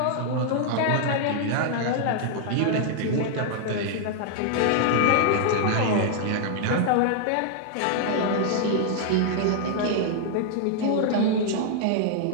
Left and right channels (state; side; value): different; both; correlation 0.00